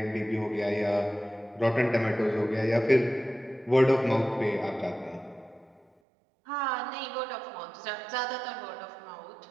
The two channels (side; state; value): left; drops out; at 5.9 s